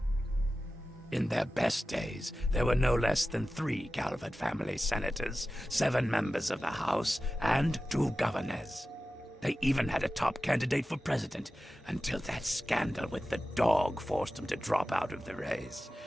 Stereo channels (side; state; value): both; normal; correlation 0.94